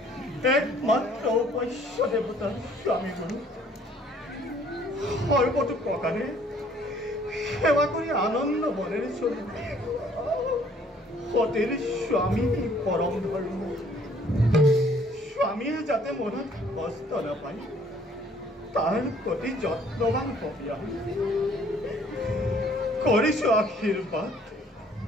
একমাত্ৰ উপাস্য দেৱতাৰ স্বামী গুৰু সৰ্বতো প্ৰকাৰে সেৱা কৰি আনন্দ মনেৰে চলি সতীৰ স্বামী পৰম ধৰ্ম স্বামীয়ে যাতে মনত কষ্ট নাপায় তাৰ প্ৰতি যত্নৱান হবি কৰিছো আশীৰ্বাদ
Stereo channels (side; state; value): both; normal; correlation 0.59